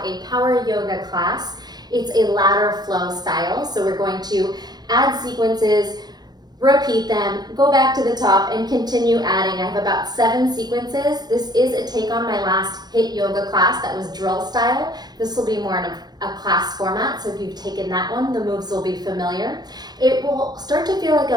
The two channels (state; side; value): late; left; 0.20 ms